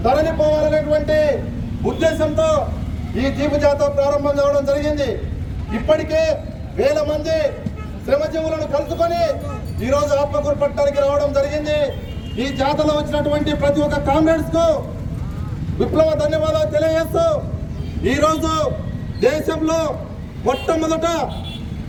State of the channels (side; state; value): both; identical; correlation 1.00